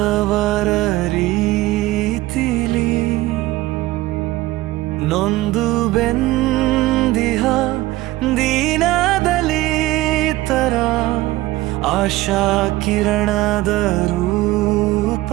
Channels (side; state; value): left; quieter; 17.7 dB